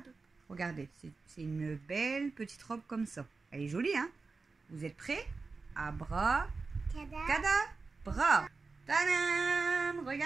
Regardez, c'est une belle petite robe comme ça. Elle est jolie, hein? Vous êtes prêts? Abra, Cada. cadabra. Tadam!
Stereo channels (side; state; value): left; quieter; 4.2 dB